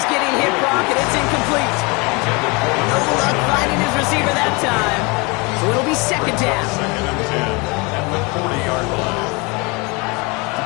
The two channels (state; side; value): quieter; right; 27.9 dB